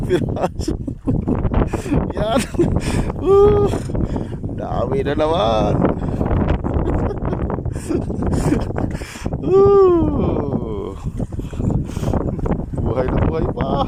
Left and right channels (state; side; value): identical; both; correlation 1.00